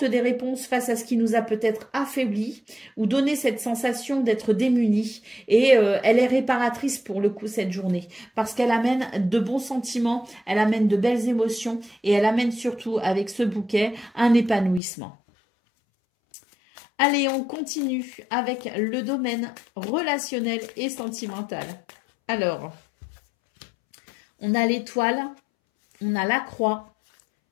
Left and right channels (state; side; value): drops out; right; at 14.8 s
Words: des réponses face à ce qui nous a peut-être affaiblis ou donné cette sensation d'être démunis. Et elle est réparatrice pour le coup cette journée parce qu'elle amène de bons sentiments, elle amène de belles émotions et elle amène surtout avec ce bouquet un épanouissement. Allez, on continue avec le domaine relationnel et sentimental. Alors, on a l'étoile, on a la croix